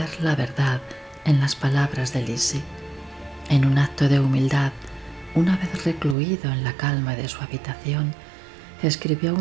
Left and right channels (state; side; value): drops out; left; at 6.2 s